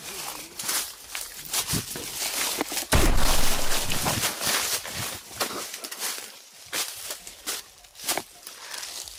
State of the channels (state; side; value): identical; both; correlation 1.00